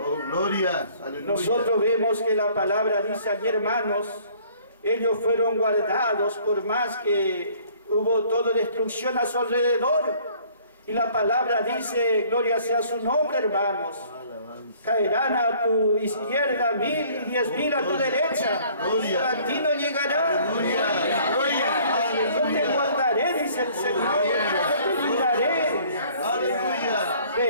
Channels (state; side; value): inverted; both; correlation -0.56